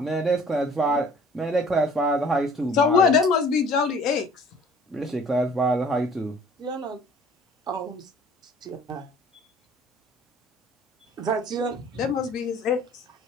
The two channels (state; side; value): normal; both; correlation 0.51